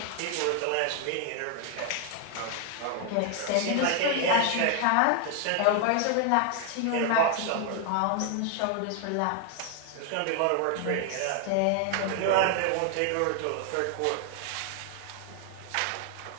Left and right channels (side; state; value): both; different; correlation 0.00